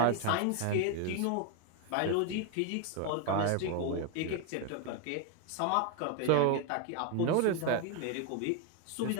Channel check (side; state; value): both; different; correlation 0.01